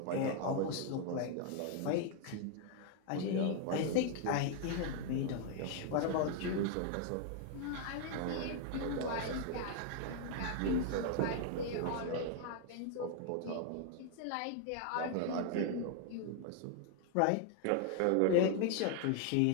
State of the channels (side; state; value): both; different; correlation 0.00